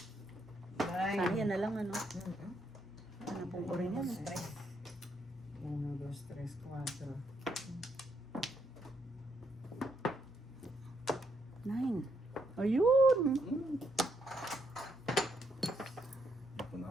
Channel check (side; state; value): both; normal; correlation 0.76